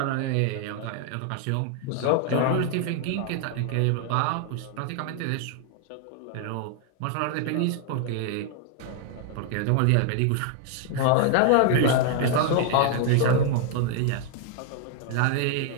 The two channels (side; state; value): both; different; correlation 0.00